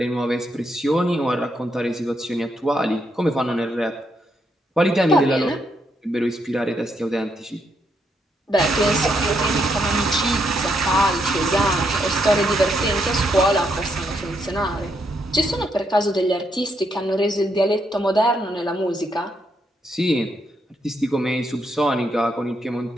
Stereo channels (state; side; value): normal; both; correlation 0.78